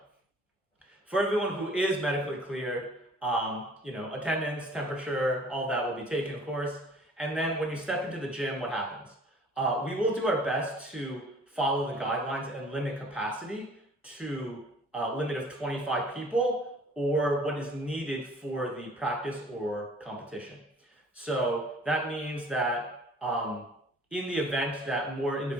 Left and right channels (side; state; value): both; normal; correlation 0.52